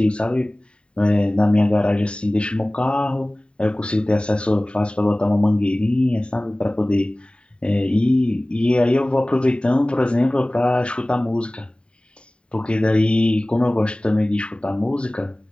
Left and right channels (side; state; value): right; late; 0.054 ms